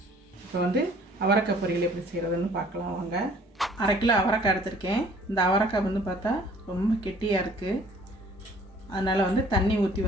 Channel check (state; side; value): normal; both; correlation 0.55